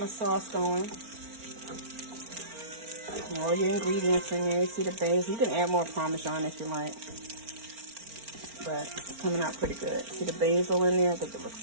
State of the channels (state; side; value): late; left; 4.4 ms